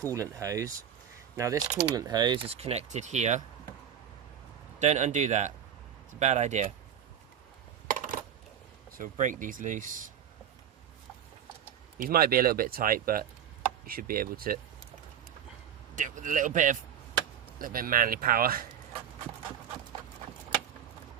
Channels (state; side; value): quieter; left; 9.2 dB